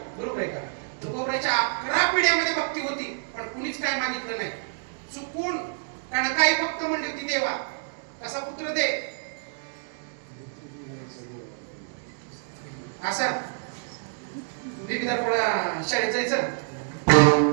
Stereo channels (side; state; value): left; silent; digital silence